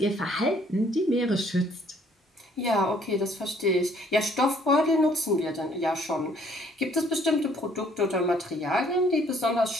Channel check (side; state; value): both; normal; correlation 0.62